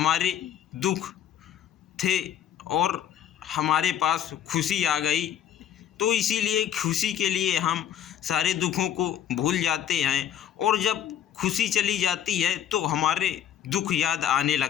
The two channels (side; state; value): right; quieter; 10.0 dB